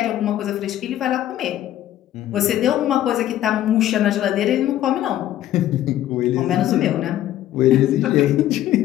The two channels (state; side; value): quieter; right; 12.8 dB